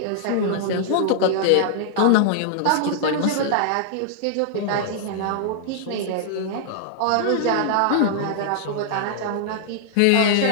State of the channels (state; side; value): different; both; correlation -0.01